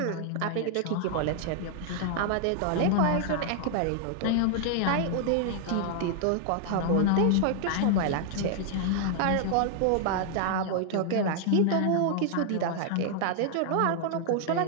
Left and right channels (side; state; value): both; different; correlation 0.00